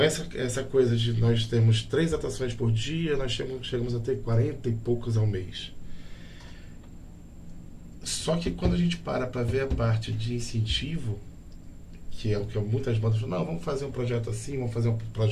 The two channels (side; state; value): both; identical; correlation 1.00